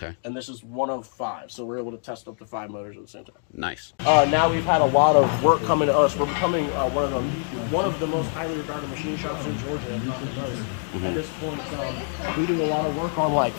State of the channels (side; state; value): right; silent; 62 dB below the other